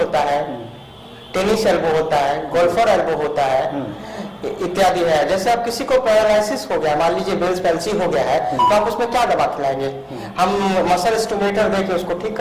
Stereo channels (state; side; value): identical; both; correlation 1.00